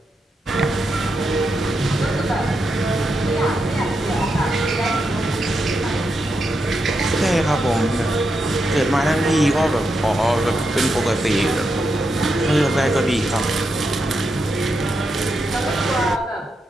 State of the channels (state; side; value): normal; both; correlation 0.84